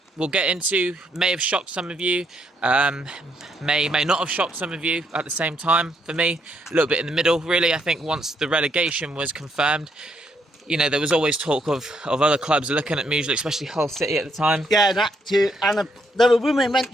we'll get into may have shocked some of you, may not have shocked some of you at the same time. For me, a little bit in the middle, really. I think once the relegation was confirmed, you know, there was always talk of other clubs looking at Muslich, especially Hull City at the time. Yeah, that too. And there were women went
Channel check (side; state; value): both; normal; correlation 0.74